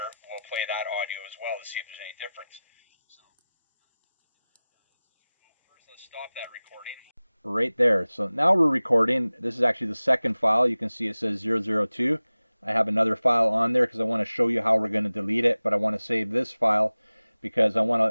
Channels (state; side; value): inverted; both; correlation -0.97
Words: we'll play that audio as well to see if there's any difference. So first, let's stop that recording. Right there. So now we're recording. This is actually the second file. You can see it says 002. I have another file on there because I want to show you how we're going to delete it, but I want to save this file because I want